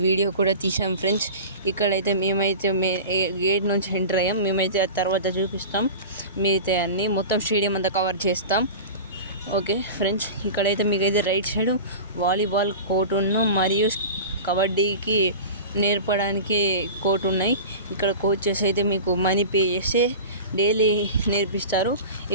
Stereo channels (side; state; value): both; inverted; correlation -0.32